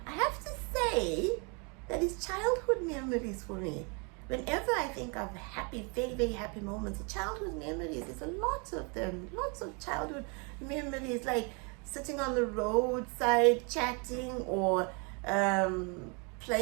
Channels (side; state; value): left; quieter; 33.8 dB